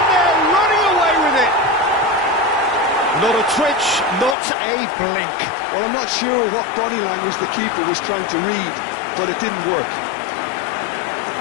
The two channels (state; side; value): drops out; right; at 4.4 s